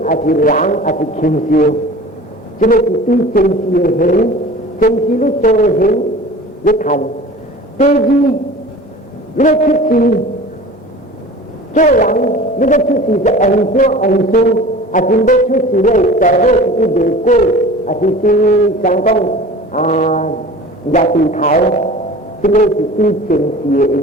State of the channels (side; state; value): both; normal; correlation 0.40